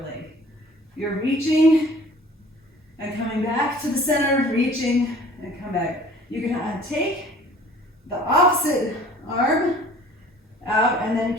leg. You're reaching and coming back to the center, reaching and come back. You can take the opposite arm out and then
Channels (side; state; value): both; normal; correlation 0.50